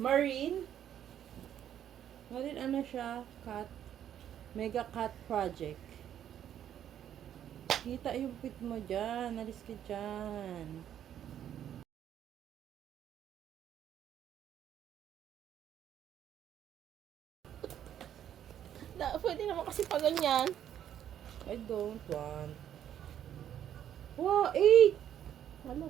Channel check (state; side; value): quieter; left; 10.3 dB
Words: Ano siya? Cat. Mega Cat Project. Kita yung pit mo dyan. Alis ka dyan. Pwede naman kasi pa ganyan. I don't want. Wow, 8!